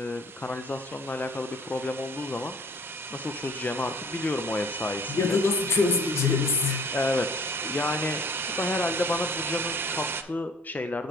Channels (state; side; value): normal; both; correlation 0.53